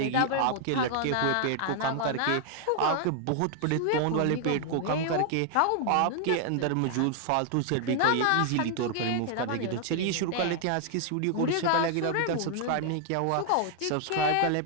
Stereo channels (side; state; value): both; different; correlation 0.00